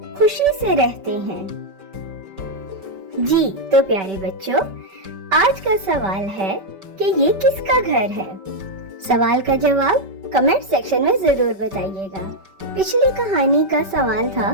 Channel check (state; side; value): late; left; 5.2 ms